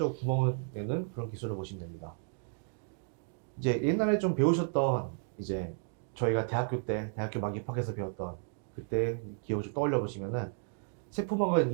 구멍을 내는 그런 기술을 보시면 됩니다. 이제 옛날에 좀 배우셨던 이제 저희가 대학교 막 입학해서 배웠던 그때 기억을 좀 떠올려 보시면은 세포막은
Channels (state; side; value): silent; left; 56 dB below the other